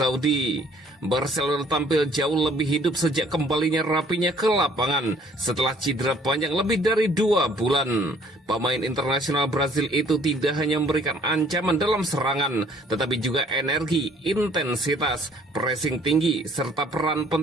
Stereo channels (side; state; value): both; normal; correlation 0.58